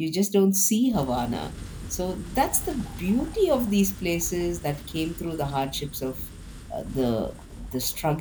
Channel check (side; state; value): both; identical; correlation 1.00